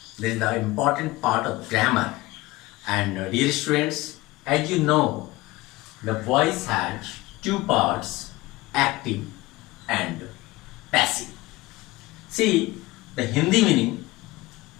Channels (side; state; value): right; quieter; 20.1 dB